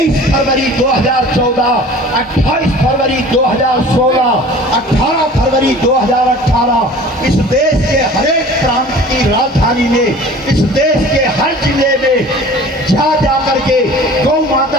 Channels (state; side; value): normal; both; correlation 0.44